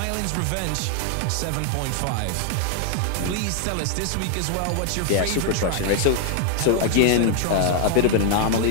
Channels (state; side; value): different; both; correlation 0.00